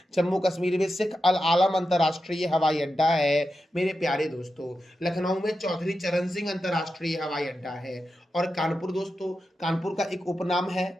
जम्मू कश्मीर में शेख अल आलम अंतर्राष्ट्रीय हवाई अड्डा है मेरे प्यारे दोस्तों। लखनऊ में चौधरी चरण सिंह अंतर्राष्ट्रीय हवाई अड्डा है। और कानपुर दोस्तों, कानपुर का एक उपनाम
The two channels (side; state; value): both; normal; correlation 0.90